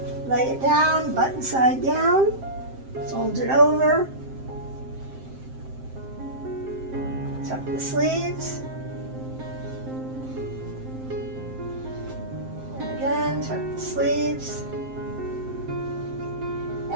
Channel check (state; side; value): late; left; 7.6 ms